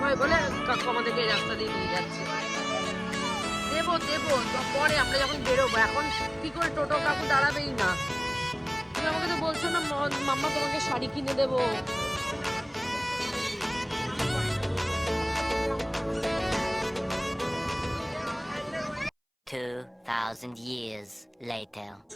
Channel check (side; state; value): both; identical; correlation 1.00